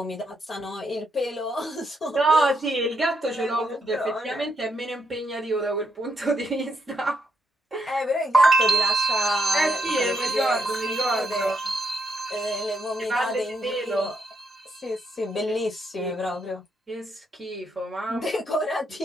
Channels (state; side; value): normal; both; correlation 0.78